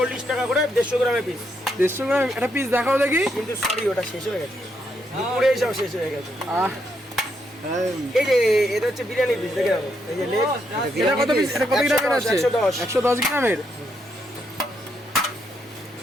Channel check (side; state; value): both; normal; correlation 0.78